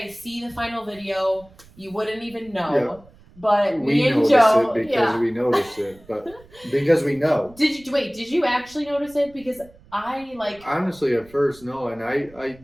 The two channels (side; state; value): right; noise; rumble, 25 dB below the sound